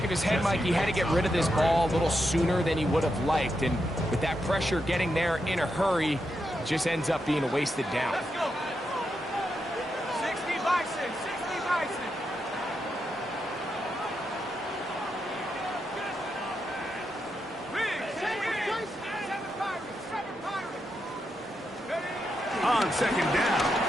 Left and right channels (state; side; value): normal; both; correlation 0.84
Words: of his head, Mike, he had to get rid of this ball a little sooner than he would have liked. And with that pressure getting there in a hurry, just ends up being a wasted down. Let's go. 60 Bison, 60 Bison. Big, 7 Pirates, 7 Pirates. On second down,